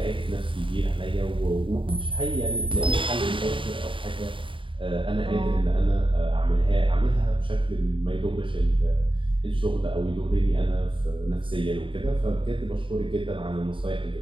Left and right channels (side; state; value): left; late; 0.25 ms